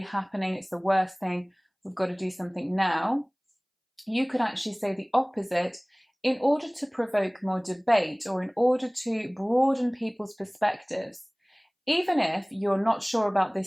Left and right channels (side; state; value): both; identical; correlation 1.00